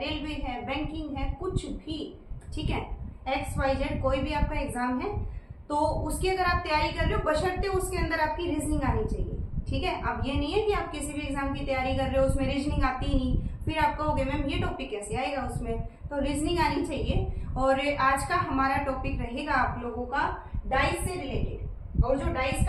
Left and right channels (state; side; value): identical; both; correlation 1.00